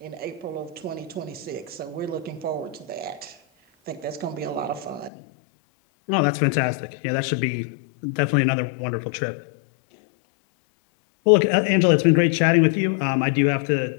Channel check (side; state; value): right; drops out; at 5.1 s